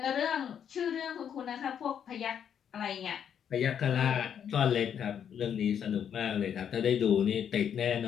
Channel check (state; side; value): quieter; right; 8.5 dB